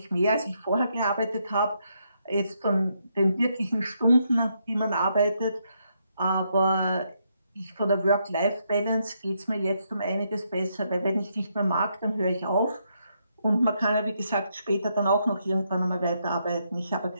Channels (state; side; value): inverted; both; correlation -0.78